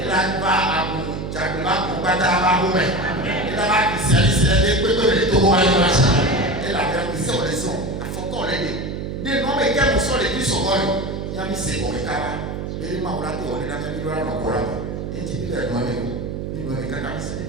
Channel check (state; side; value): noise; right; hum, 5 dB below the sound